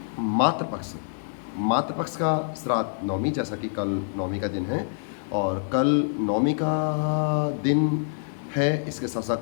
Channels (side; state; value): right; silent; digital silence